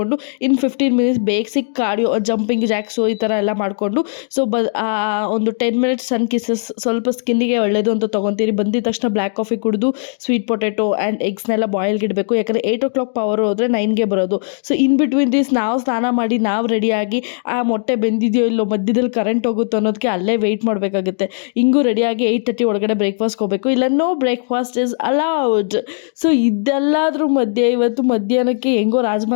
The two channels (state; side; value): silent; right; digital silence